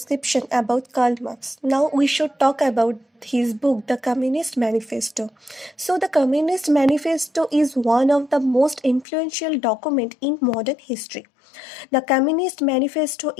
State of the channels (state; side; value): drops out; right; at 9.1 s